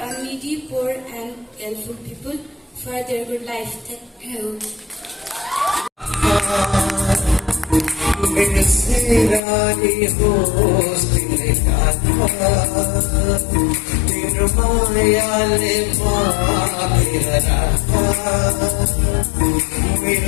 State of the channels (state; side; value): drops out; right; at 9.4 s